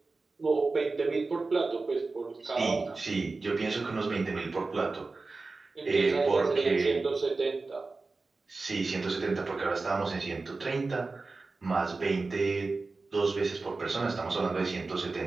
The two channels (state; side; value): quieter; left; 3.7 dB